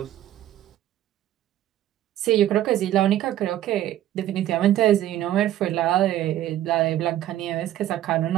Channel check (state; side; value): quieter; left; 12.8 dB